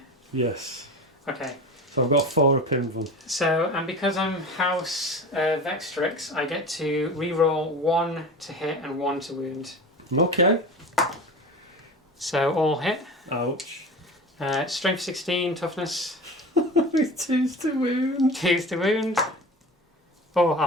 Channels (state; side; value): normal; both; correlation 0.33